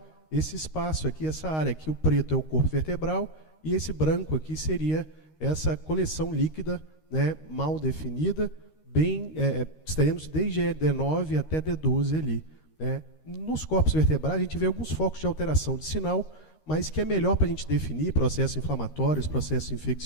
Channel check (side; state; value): right; late; 13 ms